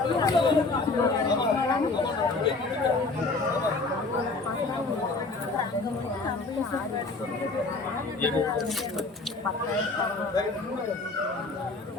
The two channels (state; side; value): quieter; right; 3.6 dB